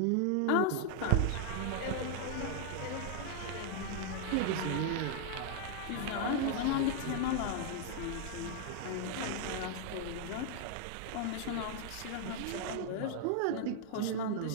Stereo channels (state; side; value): different; both; correlation 0.00